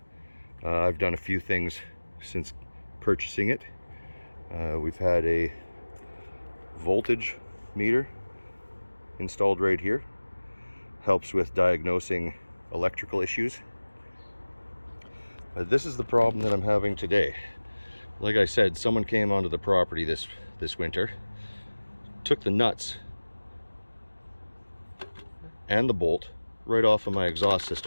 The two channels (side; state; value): both; inverted; correlation -1.00